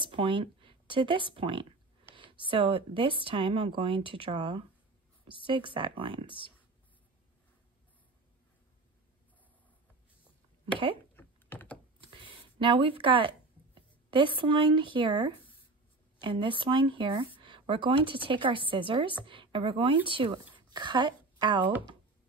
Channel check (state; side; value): quieter; left; 3.4 dB